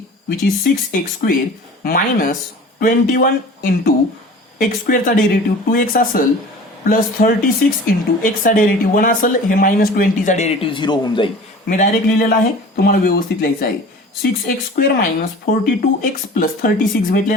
which is 6x square minus 21 into x स्क्वेअरचा derivative 2x असेल प्लस 36 इंटू एक्सचा derivative 1 असेल. हे मायनस 20चा डेरिव्हेटिव्ह 0 होऊन जाईल. मी डायरेक्ट लिहिलेला आहे, तुम्हाला व्यवस्थित लिहायचं आहे. 6x square minus 42x plus 36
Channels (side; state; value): both; normal; correlation 0.42